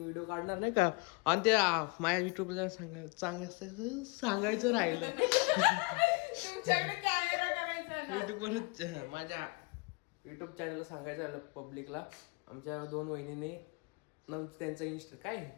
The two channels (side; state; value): right; quieter; 29.8 dB